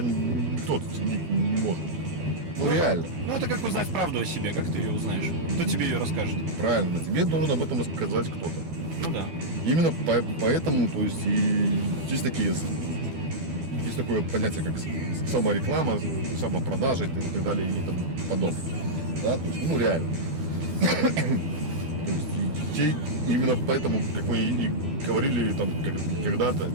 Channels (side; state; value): left; late; 12 ms